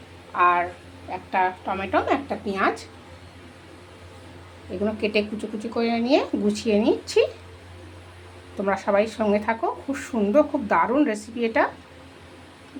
আর একটা টমেটো, একটা পেঁয়াজ, এগুলো কেটে কুচি কুচি করে নিয়ে গুছিয়ে নিচ্ছি। তোমরা সবাই সঙ্গে থাকো। খুব সুন্দর, খুব দারুণ রেসিপি এটা।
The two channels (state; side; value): identical; both; correlation 1.00